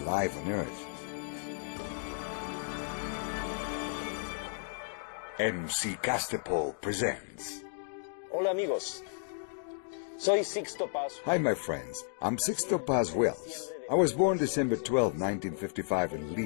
on Earth? MC Castepol presents. Hola amigos, soy Sixto Paz. Hi my friends, I'm Sixto Paz Wells. I was born December 12, 1955 in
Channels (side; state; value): right; silent; digital silence